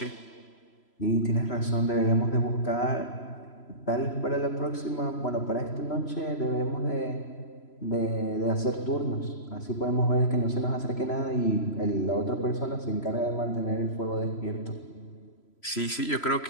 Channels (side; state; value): right; late; 3.0 ms